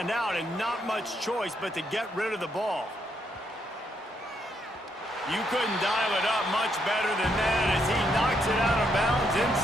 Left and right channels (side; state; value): both; normal; correlation 0.76